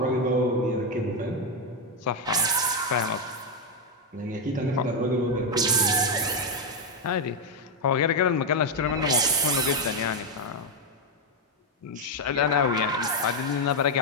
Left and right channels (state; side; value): normal; both; correlation 0.03